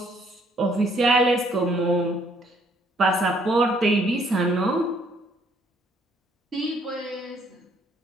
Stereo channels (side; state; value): both; normal; correlation 0.65